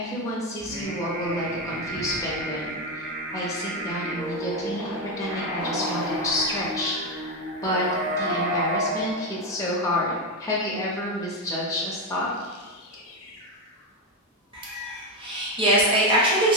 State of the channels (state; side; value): normal; both; correlation 0.09